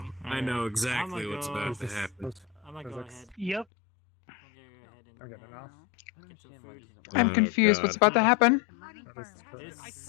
I know exactly what's about to happen. I'm gonna go ahead. Yep. Okay, enough. I'm confused. What's about to happen?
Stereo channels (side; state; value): right; drops out; at 3.7 s